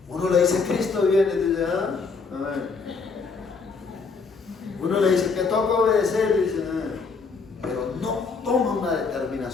Uno le dice: Cristo viene, y dice: ¿ah? Amén. Uno le dice que toca obedecer, y dice: pero no toma una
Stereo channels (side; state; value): right; quieter; 4.7 dB